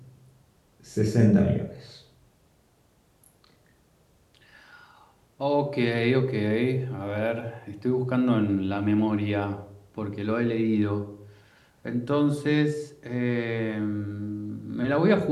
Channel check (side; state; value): both; identical; correlation 1.00